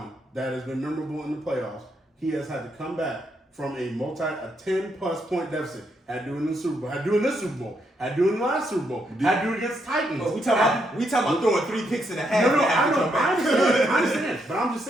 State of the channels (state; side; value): normal; both; correlation 0.78